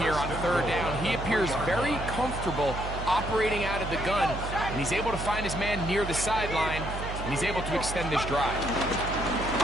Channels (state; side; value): noise; right; hum, 7 dB below the sound